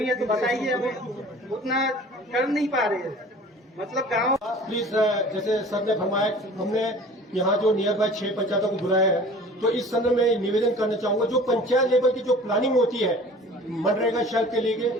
है तो बताइए, हम उतना कर नहीं पा रहे हैं। मतलब गाँव प्लीज जैसे सर ने फरमाया, हमने यहाँ जो नियर बाय 6 पंचायतों को बुलाया है, तो इस संदर्भ में निवेदन करना चाहूंगा जो पंचायत लेवल की जो प्लानिंग होती है मनरेगा शेल्फ के लिए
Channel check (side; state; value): both; normal; correlation 0.45